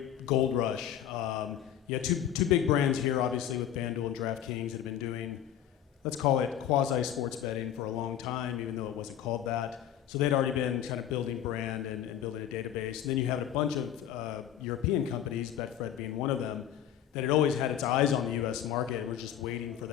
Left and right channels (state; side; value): quieter; right; 10.4 dB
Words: gold rush. You had two big brands here, obviously, with FanDuel and DraftKings have been doing, let's call it quasi-sports betting for a long time, even though it wasn't called that. So they'd already been kind of building brand and building a database. And then you had a bunch of European companies, Betfred being one of them, that had always had its eyes on the US market and were just waiting for